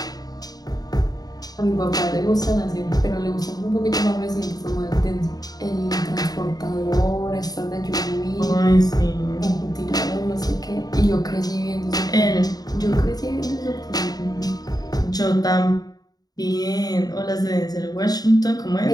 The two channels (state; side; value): late; right; 0.19 ms